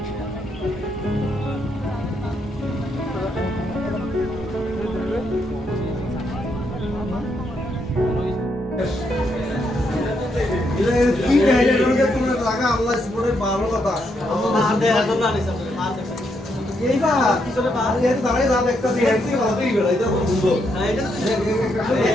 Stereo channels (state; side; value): normal; both; correlation 0.77